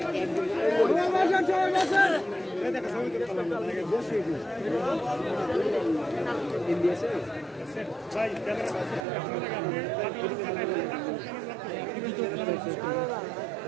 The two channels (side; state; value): left; drops out; at 9.1 s